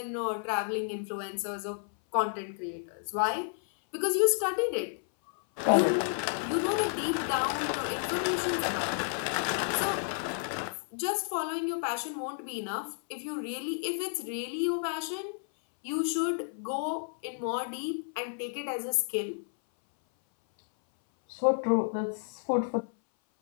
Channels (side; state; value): right; silent; 57 dB below the other